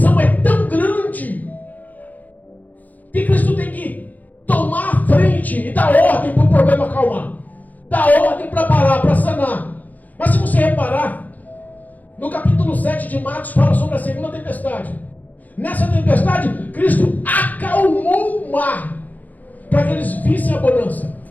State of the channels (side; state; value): right; late; 0.081 ms